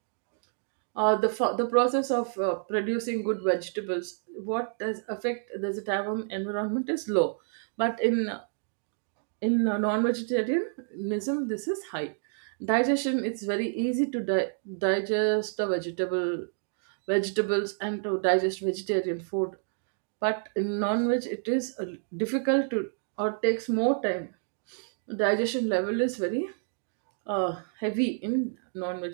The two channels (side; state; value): left; silent; digital silence